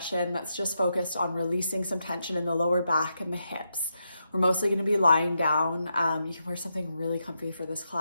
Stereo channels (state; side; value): inverted; both; correlation -0.84